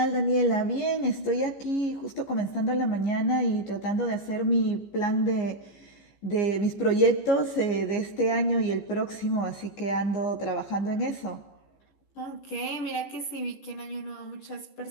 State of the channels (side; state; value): right; late; 15 ms